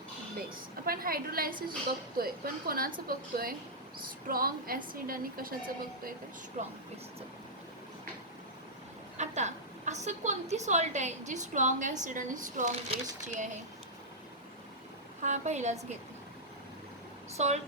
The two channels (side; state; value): both; normal; correlation -0.10